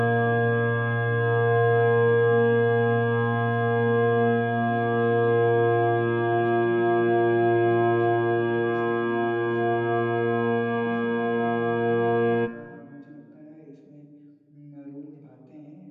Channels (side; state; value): both; identical; correlation 1.00